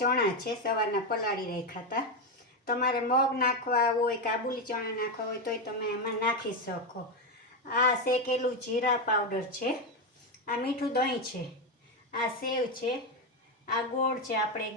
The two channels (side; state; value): both; normal; correlation 0.10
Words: છે, સવારના પલાળી રાખ્યા હતા। તમારે મગ નાખવા હોય, કાબુલી ચણા નાખવા હોય તોય તમે એમાં નાખી શકો। આ શેકેલું જીરા પાવડર છે, આ મીઠું દહીં છે, આ સેવ છે, આ ગોળ છે, આપણે